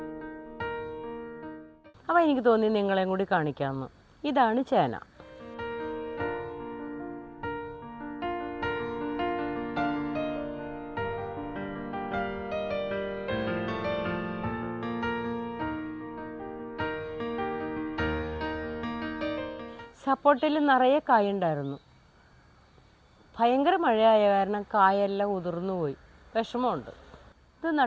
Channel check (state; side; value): identical; both; correlation 1.00